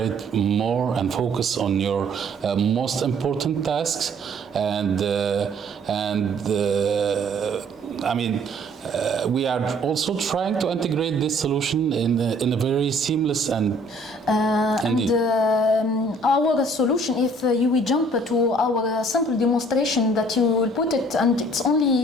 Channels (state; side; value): normal; both; correlation 0.58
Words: more and focus on your most important tasks. We are also trying to integrate this solution in a very seamless and our solution, if we jump to our simple demonstration that you will put it, and it's